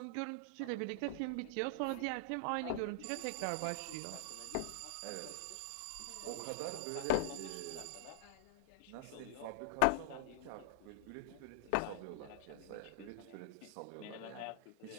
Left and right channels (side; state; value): both; different; correlation -0.02